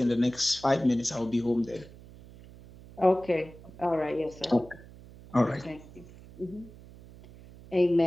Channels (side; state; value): right; noise; hum, 20 dB below the sound